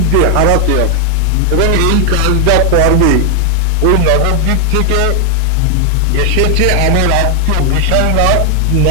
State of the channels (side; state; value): both; different; correlation 0.00